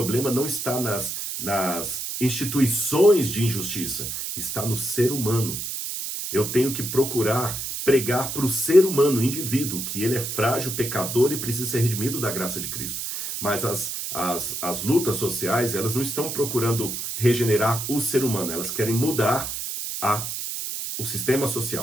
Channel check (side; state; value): right; noise; hiss, 5 dB below the sound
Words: não está nas instituições de injustiça, está no ser humano. Eu tenho que procurar pregar para o ser humano, o indivíduo, que ele é frágil, pecador e precisa ser redimido da graça de Cristo. Mas as lutas sociais, elas não estão procurando regenerar o ser humano, elas querem mudar o sistema